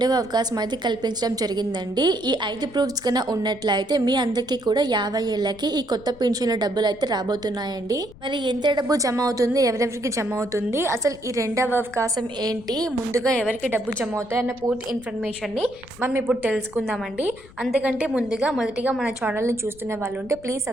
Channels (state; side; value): noise; left; rumble, 21 dB below the sound